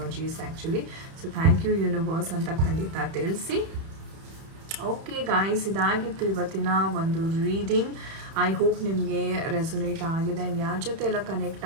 actually. So thank you universe ಅಂತ ಖಂಡಿತ ತಿಳಿಸಿ. ಓಕೆ ಗಾಯ್ಸ್, ಇದಾಗಿತ್ತು ಇವತ್ತಿನ ಒಂದು ರೀಡಿಂಗ್. ಐ ಹೋಪ್ ನಿಮಗೆ ರೆಸೊನೇಟ್ ಆಗಿದೆ ಆ್ಯಂಡ್ ಯಾರ ಜೊತೆ ಎಲ್ಲ ಕನೆಕ್ಟ್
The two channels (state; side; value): late; left; 31 ms